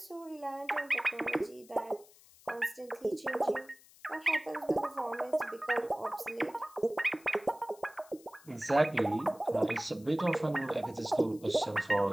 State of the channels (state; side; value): noise; left; hiss, 25 dB below the sound